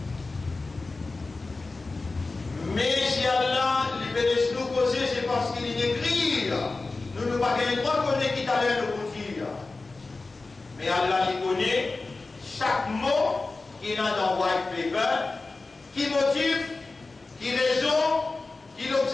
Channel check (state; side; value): quieter; right; 3.6 dB